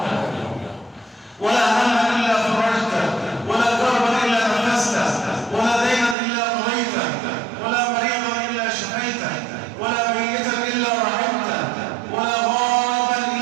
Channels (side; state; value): left; drops out; at 6.2 s